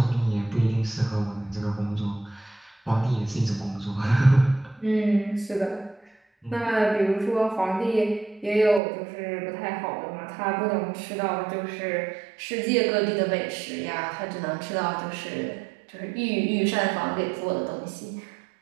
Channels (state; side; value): drops out; left; at 8.8 s